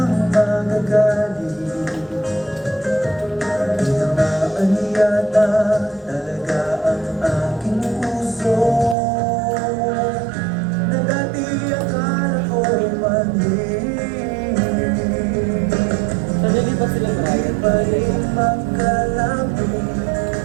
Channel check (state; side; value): drops out; left; at 9.0 s